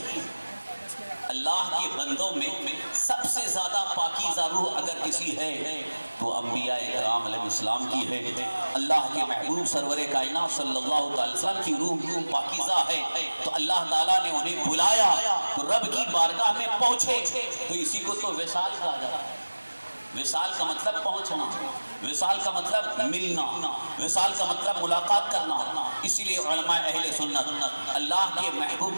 اللہ کے بندوں میں سب سے زیادہ پاکیزہ روح اگر کسی ہے تو انبیاء کرام علیہ السلام کی ہے۔ اللہ کے محبوب سرور کائنات صلی اللہ علیہ وسلم کی روح پاکیزہ ہے، تو اللہ تعالیٰ نے انہیں بلایا تو رب کی بارگاہ میں پہنچے، تو اسی کو تو وصال کہا جاتا ہے۔ وصال کا مطلب پہنچنا، وصال کا مطلب ملنا، وصال کا مطلب ملاقات کرنا۔ اسی لیے علماء اہل سنت اللہ کے محبوب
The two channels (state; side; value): inverted; both; correlation -1.00